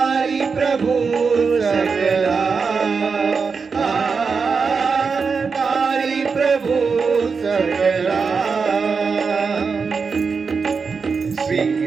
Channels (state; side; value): quieter; left; 5.2 dB